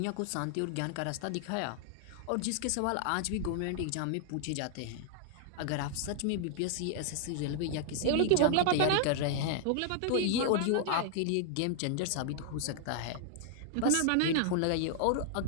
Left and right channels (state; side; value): different; both; correlation 0.00